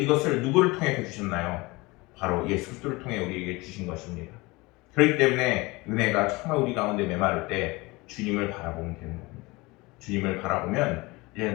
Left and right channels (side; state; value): right; quieter; 23.3 dB